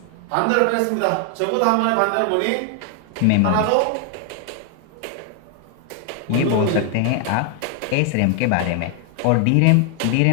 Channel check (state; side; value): different; both; correlation 0.00